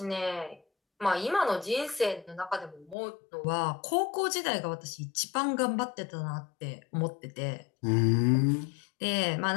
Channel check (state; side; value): drops out; right; at 3.0 s